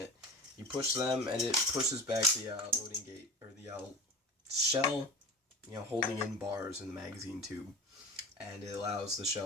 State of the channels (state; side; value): normal; both; correlation 0.31